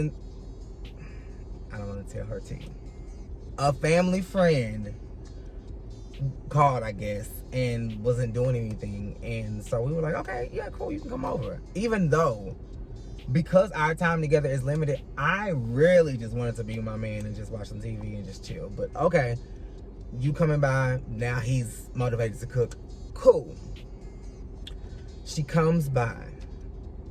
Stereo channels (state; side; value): identical; both; correlation 1.00